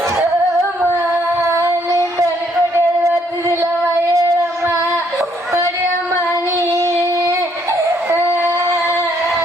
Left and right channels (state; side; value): normal; both; correlation 0.69